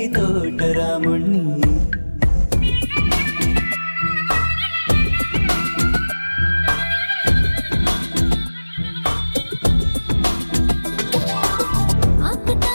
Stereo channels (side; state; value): both; inverted; correlation -1.00